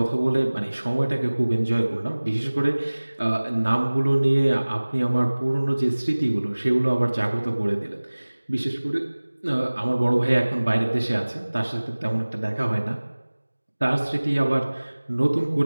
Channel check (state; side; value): inverted; both; correlation -1.00